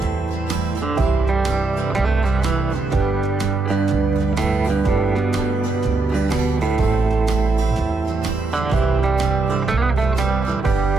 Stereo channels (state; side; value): quieter; left; 3.2 dB